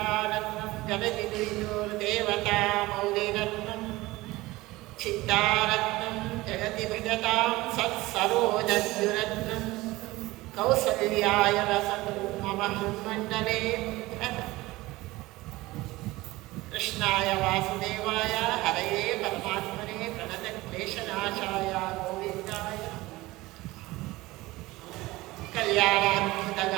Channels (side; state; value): left; quieter; 19.6 dB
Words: जगदिदेवता मौलिरत्नं चित्तारत्नं जगति भजतां सत्सरोजद्युरत्नं कौसल्याय वसतु मम हृन्मण्डले कृष्णाय वासुदेवाय हरये परमात्मने प्रणतक्लेशनाशाय गोविन्दाय